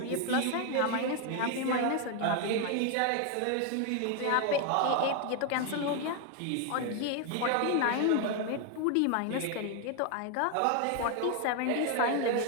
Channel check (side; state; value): both; different; correlation 0.01